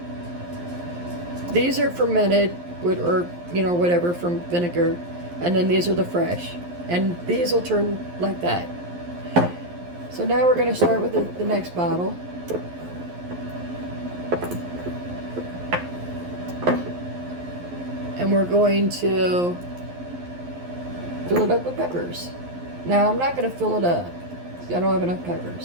These are fermented with, or you know, whatever, from vinegar, and then these are the fresh, and these will turn like that. So now we're going to start with the next bottle. And we're going to fill it up with peppers. Now I'm not going to fill it up, I don't have enough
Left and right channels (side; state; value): left; late; 11 ms